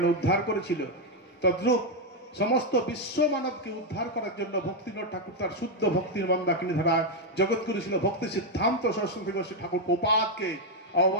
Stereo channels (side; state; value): both; normal; correlation 0.02